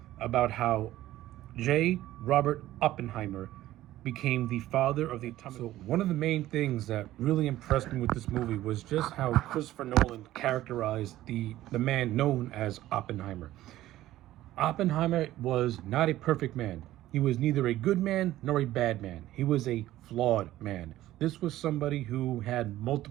about how J. Robert Oppenheimer became the father of the atomic. So one of the main things that really impressed me with this movie was just how Christopher Nolan characterized the man known as Oppenheimer. Oppenheimer was not a perfect man. He was neither a good man nor a bad man. He was a flawed man. This was somebody who had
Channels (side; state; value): left; quieter; 14.7 dB